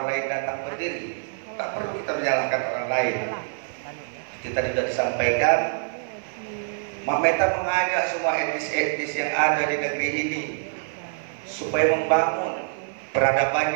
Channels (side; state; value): left; silent; 56 dB below the other